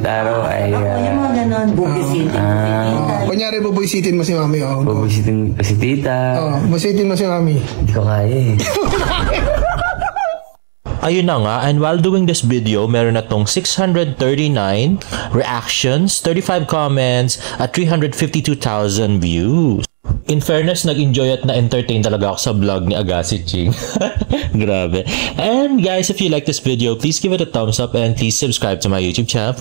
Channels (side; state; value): left; silent; digital silence